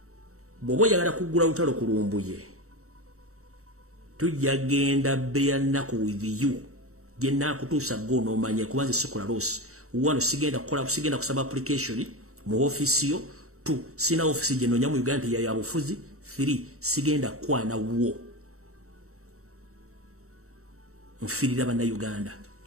Bwoba oyagala kuggula lutalo ku Lumbuye tujja genda beya nnaku with you gye naakutuusa go n'omanye kubanze sikola losi wano sigenda kusaba application mu ofisi yo 2 sina ofisi gye noonya mu Uganda ya bufuzi 3 sigenda kwana wo nfirira bana Uganda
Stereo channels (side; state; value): left; late; 0.64 ms